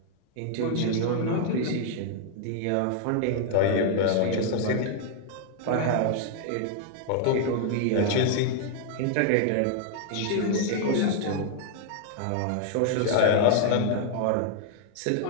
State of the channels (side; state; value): both; different; correlation 0.00